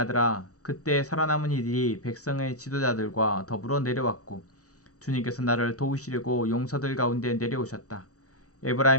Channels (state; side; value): late; right; 0.66 ms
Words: 그때 살아남은 이들이 백성의 지도자들과 더불어 내려왔고 주님께서 나를 도우시려고 용사들 가운데 내려오셨다.